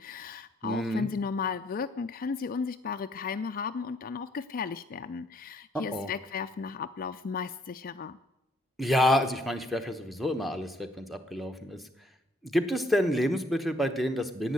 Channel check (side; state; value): both; normal; correlation 0.66